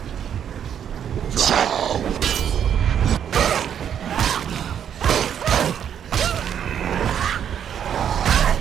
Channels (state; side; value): quieter; left; 8.9 dB